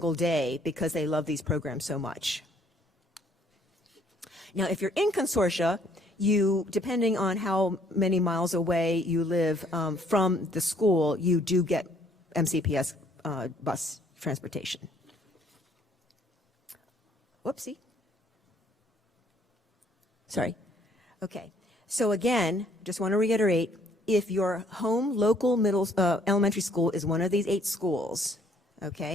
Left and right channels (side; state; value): both; normal; correlation 0.63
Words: day because they love these programs so much. Now, if you're in consortia, you, depending on how many miles away you live from the school, you do get MCPS bus transportation. Whoopsie. Sorry. Okay. So again, just want to reiterate, if your home local elementary school is one of these 8 schools,